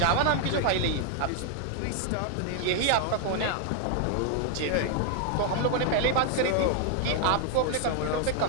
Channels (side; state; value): both; different; correlation 0.00